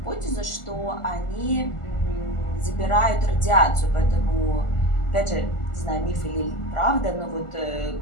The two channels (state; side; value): late; right; 1.4 ms